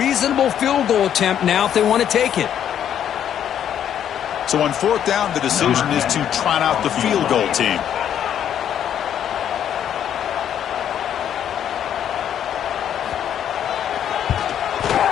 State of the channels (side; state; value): right; quieter; 9.7 dB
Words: field goal attempt now if they want to take it. So on fourth down, the decision is to trot out the field goal team.